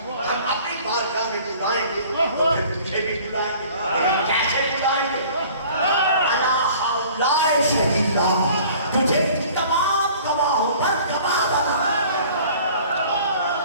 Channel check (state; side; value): inverted; both; correlation -0.49